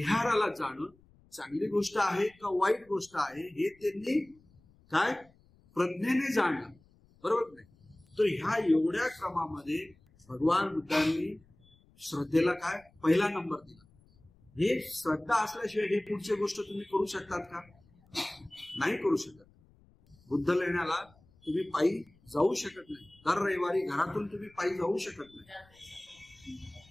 जाणं चांगली गोष्ट आहे का वाईट गोष्ट आहे हे त्यांनी काय प्रज्ञेने जाणलं. बरोबर नाही? तर ह्या एवढ्या क्रमामध्ये भगवान बुद्धांनी श्रद्धेला काय पहिला नंबर दिला. हे श्रद्धा असल्याशिवाय हे पुढची गोष्ट तुम्ही करू शकतात का? नाही करू शकत. बुद्ध लेण्याला तुम्ही पायी जाऊ शकत नाही. दर रविवारी घरातून तुम्ही पायी जाऊ शकत नाही.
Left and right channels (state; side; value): noise; left; rumble, 30 dB below the sound